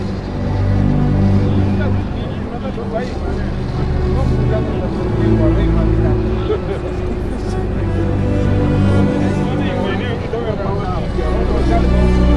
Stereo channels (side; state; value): both; identical; correlation 1.00